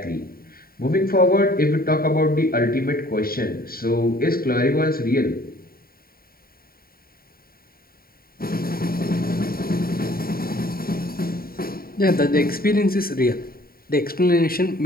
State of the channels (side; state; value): right; late; 0.43 ms